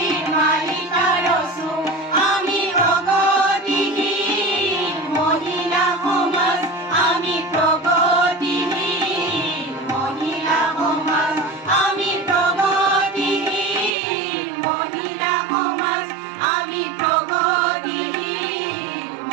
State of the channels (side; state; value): left; drops out; at 13.9 s